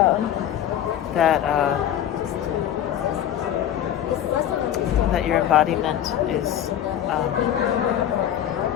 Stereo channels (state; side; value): quieter; right; 10.7 dB